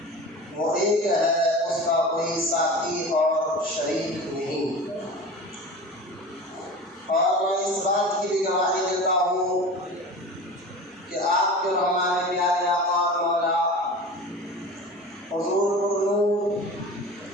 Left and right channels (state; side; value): normal; both; correlation 0.34